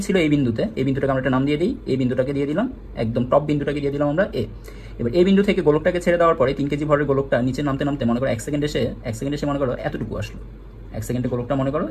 ছিল এই বিন্দুতে, এই বিন্দুটাকে আমরা একটা নাম দিয়ে দিই, এই বিন্দুটাকে দিয়ে দিলাম, একদম টপ বিন্দুটাকে দিয়ে দিলাম আমরা এ। এবার এই বিন্দু থেকে গোলকটাকে ছেড়ে দেওয়ার পরে 3 কেজি ভরের গোলকটা নিচে নামতে নামতে মনে করো 1 সেকেন্ড এসে মনে করো এতটুকু আসলো। 1 সেকেন্ডে গোলকটা মনে করো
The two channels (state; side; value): identical; both; correlation 1.00